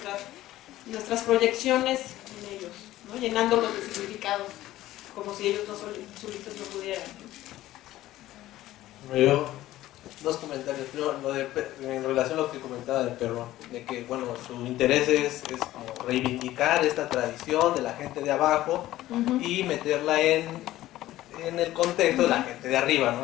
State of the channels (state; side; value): quieter; right; 15.1 dB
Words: Nuestras proyecciones en ellos, ¿no? Llenándolos de significados, como si ellos no solitos no pudieran. Yo, dos comentarios. Primero, en relación a lo que comentaba del perro, de que, bueno, su interés es como reivindicar esta tradición de la gente de abajo y meterla en el contexto de la gente de arriba,